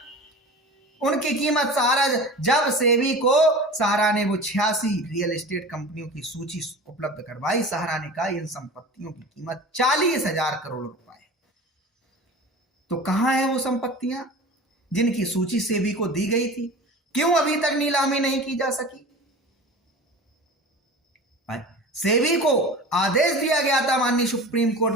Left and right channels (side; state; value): both; normal; correlation 0.36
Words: उनकी कीमत सहारा, जब सेबी को सहारा ने वो 86 रियल एस्टेट कंपनियों की सूची उपलब्ध करवाई, सहारा ने कहा इन संपत्तियों की कीमत 40,000 करोड़ रुपए है। तो कहां है वो संपत्तियां जिनकी सूची सेबी को दी गई थी? क्यों अभी तक नीलामी नहीं की जा सकी? सेबी को आदेश दिया गया था माननीय सुप्रीम कोर्ट